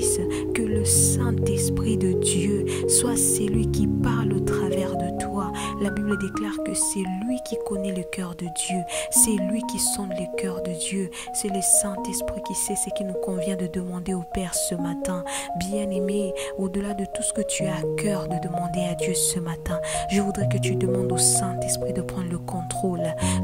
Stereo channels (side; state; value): both; identical; correlation 1.00